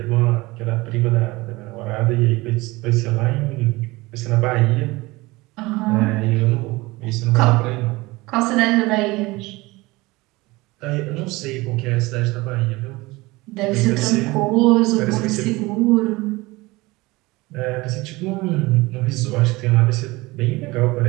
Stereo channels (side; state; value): left; quieter; 21.8 dB